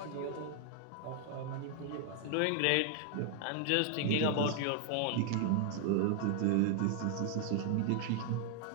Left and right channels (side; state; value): both; different; correlation 0.00